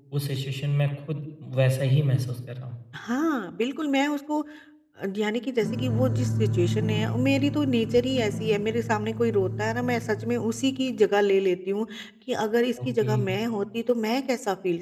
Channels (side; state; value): both; identical; correlation 1.00